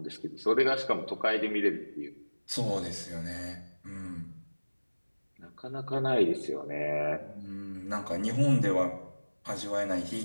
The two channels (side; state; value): both; inverted; correlation -1.00